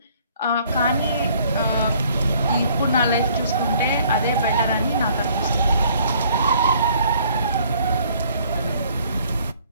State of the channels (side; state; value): both; inverted; correlation -0.60